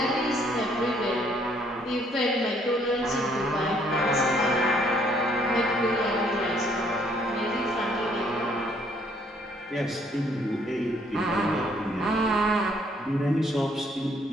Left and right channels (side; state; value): both; normal; correlation 0.65